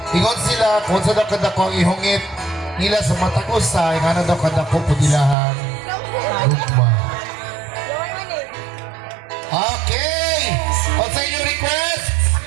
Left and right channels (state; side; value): drops out; left; at 5.4 s